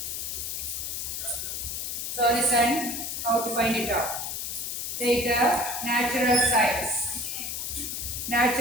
So listen how to find it out. Take the natural sines.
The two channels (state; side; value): noise; left; hiss, 4 dB below the sound